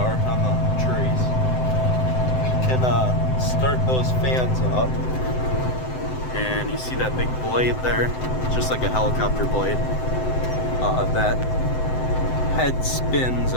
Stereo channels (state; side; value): late; right; 7.8 ms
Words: on the trees. We can start those fans up. And you see that big blade there? It's just like a helicopter blade. That head spins